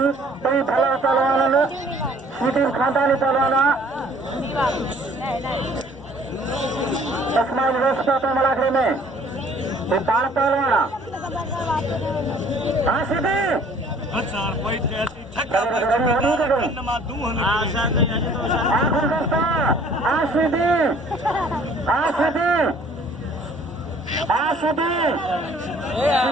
कई भला पहलवान सीधी खानदानी पहलवाना तस्माई व्यवस्था पे मलाखरे में ये बाण पहलवाना हाँ सीधी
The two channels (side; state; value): both; normal; correlation 0.55